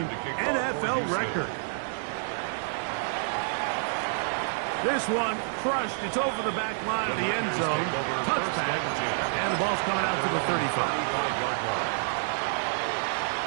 NFL record. This one crushed. It's over the back line of the end zone. Touchback. And the ball's coming out to the 35. 35-yard line.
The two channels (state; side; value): silent; left; digital silence